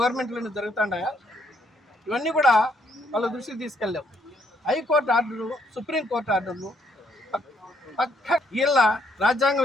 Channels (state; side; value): normal; both; correlation 0.71